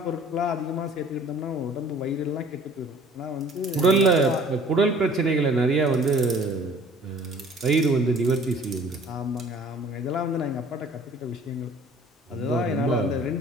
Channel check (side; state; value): both; normal; correlation 0.51